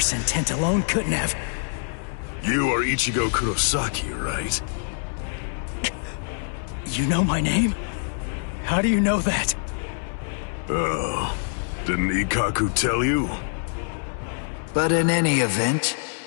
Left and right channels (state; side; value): silent; right; 62 dB below the other